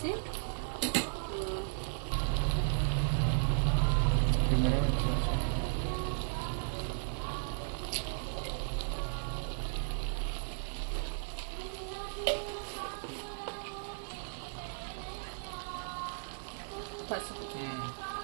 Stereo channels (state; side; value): silent; left; digital silence